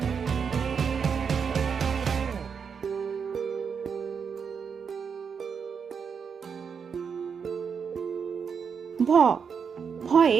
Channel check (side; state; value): left; quieter; 6.4 dB